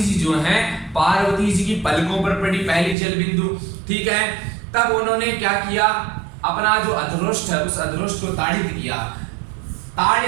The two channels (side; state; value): left; drops out; at 3.0 s